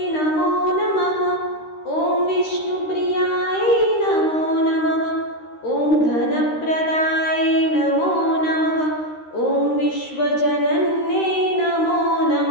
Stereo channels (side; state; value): right; late; 13 ms